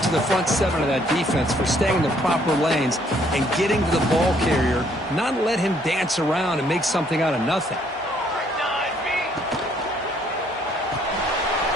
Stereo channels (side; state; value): both; normal; correlation 0.66